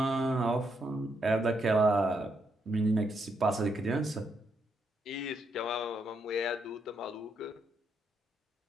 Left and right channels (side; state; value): both; normal; correlation 0.78